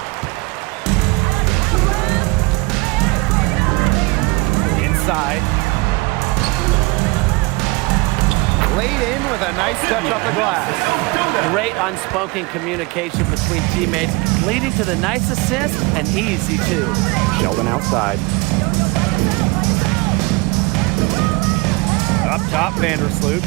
Inside. Laid in with a nice touch off the glass. Great unspoken communication between teammates, leading to the nice assist and easy two. Sheldon outside. Up top, Vandersloot.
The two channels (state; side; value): quieter; left; 24.8 dB